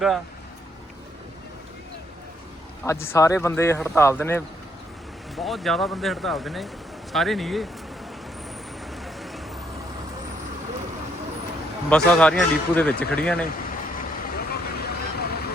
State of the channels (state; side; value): normal; both; correlation 0.72